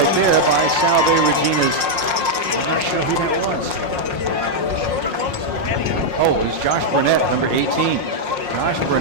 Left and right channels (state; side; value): late; left; 5.6 ms